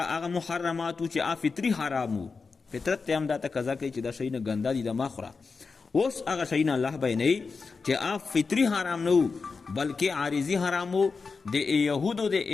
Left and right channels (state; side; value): quieter; right; 4.7 dB